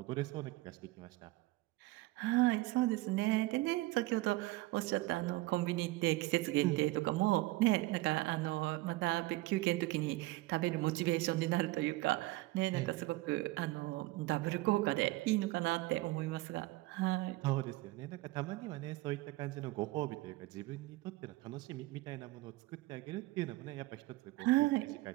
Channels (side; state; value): left; quieter; 19.7 dB